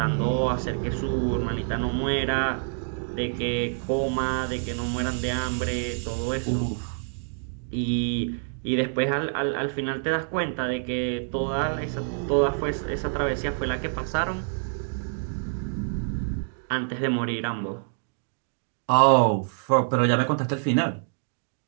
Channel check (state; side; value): silent; left; digital silence